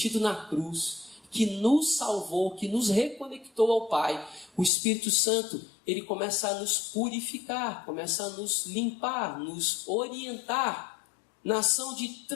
na cruz, que nos salvou, que nos reconectou ao Pai, o Espírito Santo, ele começa a nos purificar, começa a nos limpar, nos orientar na ação de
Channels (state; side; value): drops out; right; at 4.7 s